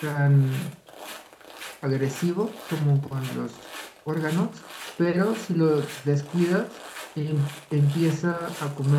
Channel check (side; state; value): both; identical; correlation 1.00